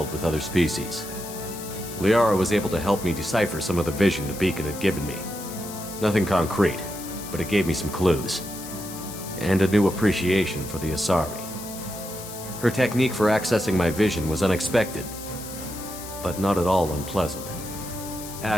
with other species. Liara was able to help me decipher some of the vision the beacon had given me. Nothing concrete, but it gave me some clues. And a new appreciation for the Asari. Her technique for accessing my vision was unexpected, but not at all unpleasant.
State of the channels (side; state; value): left; noise; hiss, 12 dB below the sound